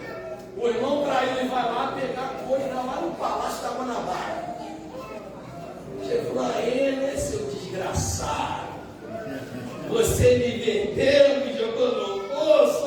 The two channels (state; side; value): identical; both; correlation 1.00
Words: o irmão traiu e vai lá pegar coisa lá no Palácio da Guanabara. Chegou lá, ele, seu desgraçado. Você me vendeu, me jogou no poço,